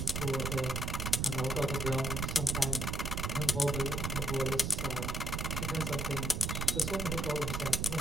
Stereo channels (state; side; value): noise; right; rumble, 1 dB below the sound